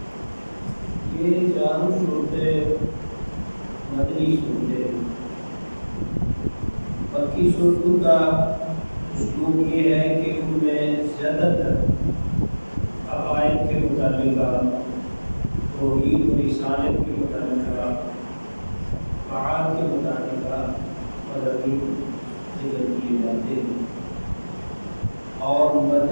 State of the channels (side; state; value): both; inverted; correlation -1.00